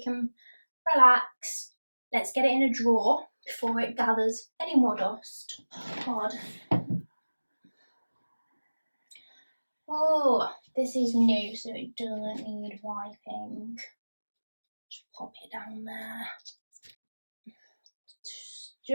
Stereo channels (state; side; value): inverted; both; correlation -1.00